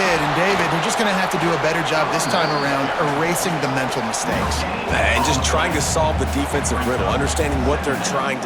And, David, they're just going to have to do a better job this time around erasing the mental mistakes. And just trying to solve the defensive riddle, understanding what they're trying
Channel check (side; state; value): both; identical; correlation 1.00